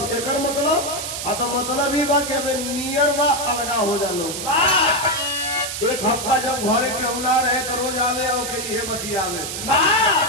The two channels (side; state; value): right; noise; hiss, 5 dB below the sound